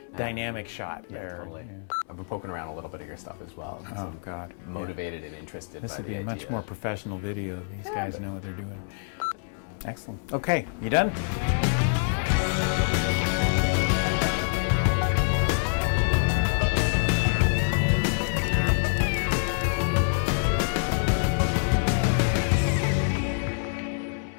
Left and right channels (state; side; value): silent; right; 61 dB below the other